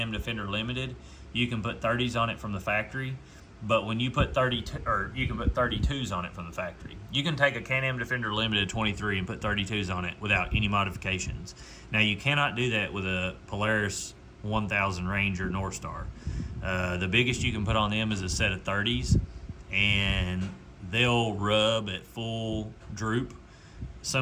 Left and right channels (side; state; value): both; identical; correlation 1.00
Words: Defender Limited. You can put 30s on it from the factory, but when you put you can put 32s on it from the factory. You can take a Can-Am Defender Limited 23 and put 32s on it without any modifications. Now you cannot do that with a Polaris 1000 Ranger North Star. The biggest you can put on them is a set of 30s, and they'll rub at full droop